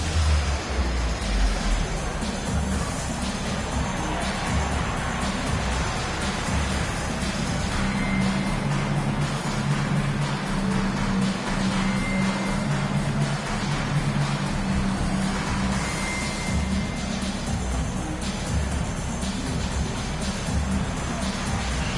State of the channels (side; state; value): both; identical; correlation 1.00